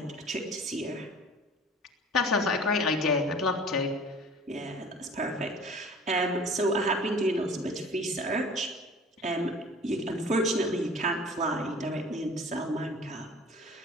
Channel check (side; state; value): both; normal; correlation 0.44